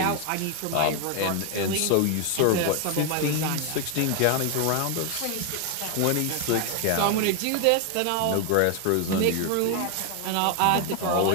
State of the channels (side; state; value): both; different; correlation 0.00